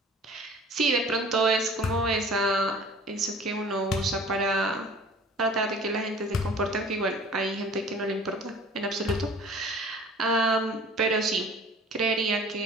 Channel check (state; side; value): normal; both; correlation 0.47